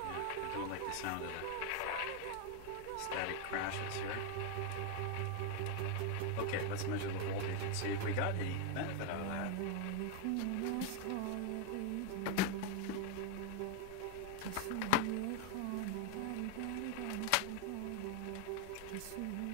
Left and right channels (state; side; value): different; both; correlation 0.01